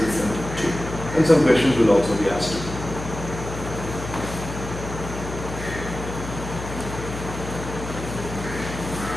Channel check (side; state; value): left; noise; hum, 8 dB below the sound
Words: listened to. And some questions will also be asked.